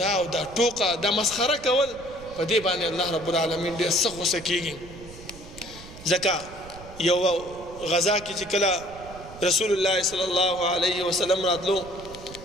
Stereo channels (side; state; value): right; noise; rumble, 17 dB below the sound